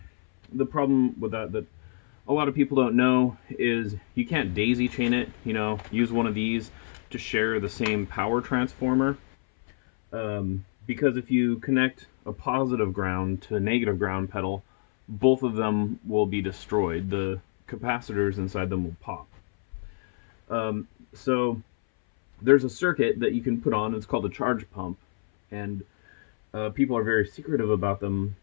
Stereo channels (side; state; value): right; silent; 60 dB below the other